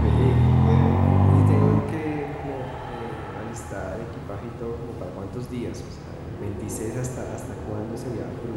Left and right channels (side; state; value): both; identical; correlation 1.00